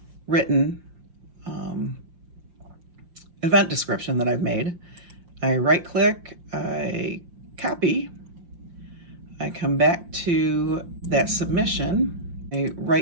event description that I've made. I right click, I copy, I come back to that submission, I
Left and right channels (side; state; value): left; late; 5.7 ms